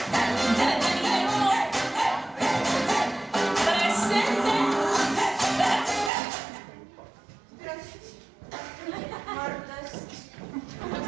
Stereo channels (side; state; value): left; drops out; at 6.1 s